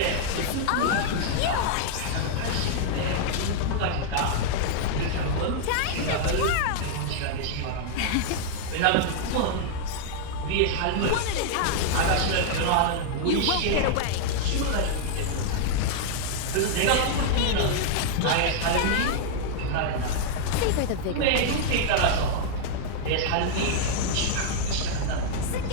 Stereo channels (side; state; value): both; different; correlation -0.01